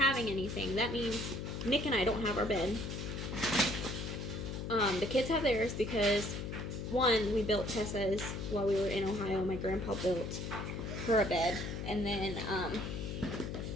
anything, that means Nick and I don't have our bed. The kids have theirs because, one, we built Tessa's while we were in Ohio. My grandpa built her a bed, and then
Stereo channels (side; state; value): left; noise; hum, 5 dB below the sound